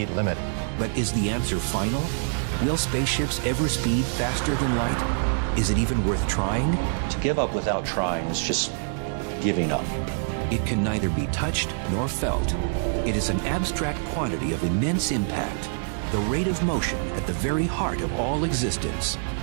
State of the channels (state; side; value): silent; left; digital silence